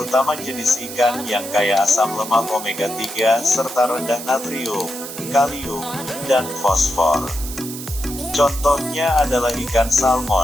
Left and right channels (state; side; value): noise; right; hiss, 10 dB below the sound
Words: jenis ikan yang kaya asam lemak omega 3 serta rendah natrium, kalium, dan fosfor. Contohnya adalah ikan